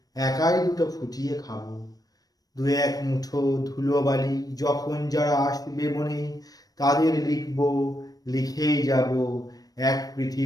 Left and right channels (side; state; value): right; late; 0.18 ms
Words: একাই দুটো ফুটিয়ে খাবো। 2-1 মুঠো ধুলোবালি যখন যারা আসবে মনে, তাদের লিখবো, লিখেই যাব। এক